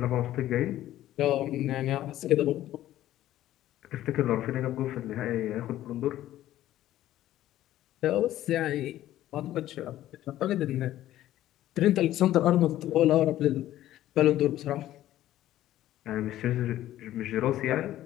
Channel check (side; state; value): right; quieter; 13.6 dB